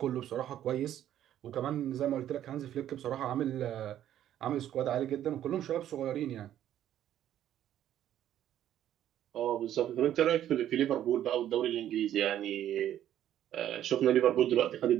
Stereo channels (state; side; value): quieter; left; 11.4 dB